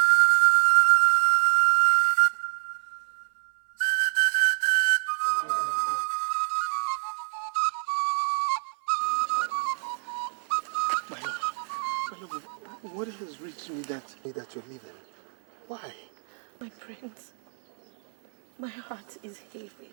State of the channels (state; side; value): silent; left; 61 dB below the other